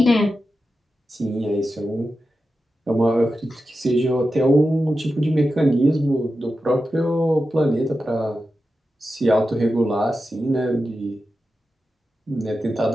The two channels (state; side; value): normal; both; correlation 0.91